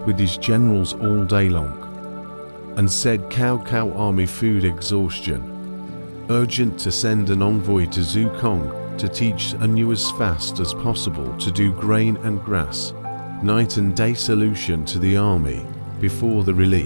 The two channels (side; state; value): both; inverted; correlation -1.00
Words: with his generals all day long and said Cao Cao army food exhaustion. Urgent to send an envoy to Zukong to teach anew as fast as possible to do grain and grass, night and day solution to the army before the